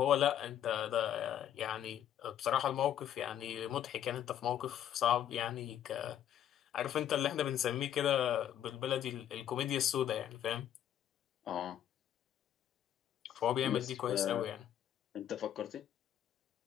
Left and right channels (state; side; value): quieter; right; 10.6 dB